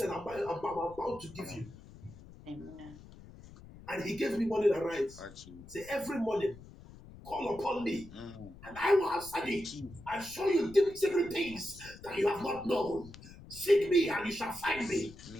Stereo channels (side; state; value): left; noise; rumble, 18 dB below the sound